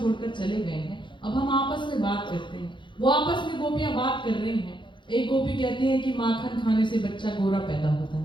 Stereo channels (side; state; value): right; late; 0.23 ms